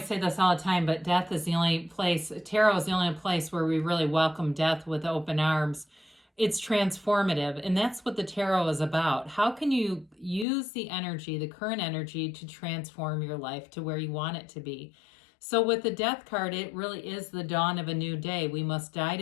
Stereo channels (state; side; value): drops out; right; at 10.5 s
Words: this all the time, but death is the only place, tarot is the only place where we really welcome death with open arms. It's transformative, and that's what the tarot is about. How can you use the energy, the current energy, to transform your life to where you want it to be? So with the death card, it really is the dawn of a new day. We must die